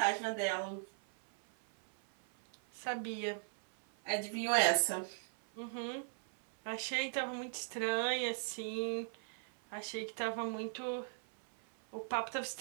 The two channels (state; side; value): silent; left; 52 dB below the other